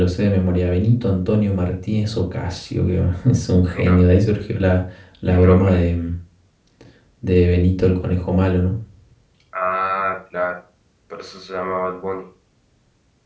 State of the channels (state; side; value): identical; both; correlation 1.00